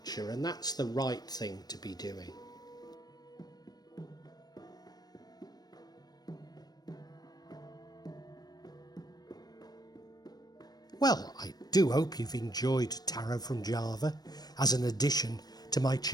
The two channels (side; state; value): right; late; 0.19 ms